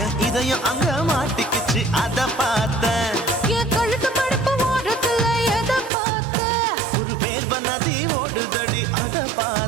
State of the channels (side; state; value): left; drops out; at 5.9 s